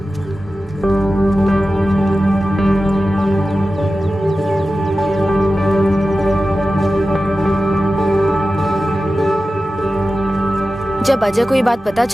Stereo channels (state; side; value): normal; both; correlation 0.94